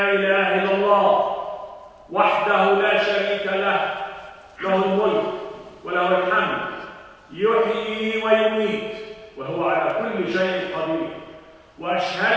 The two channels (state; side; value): identical; both; correlation 1.00